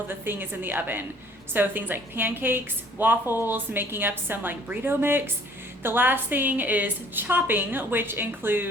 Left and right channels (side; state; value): both; normal; correlation 0.55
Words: the thing is in the oven. So things like pancakes, waffles, making up some like burrito mix. The last thing is chopping, which